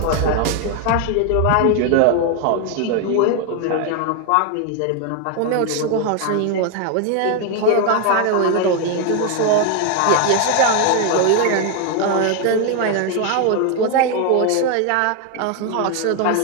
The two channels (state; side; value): different; both; correlation 0.01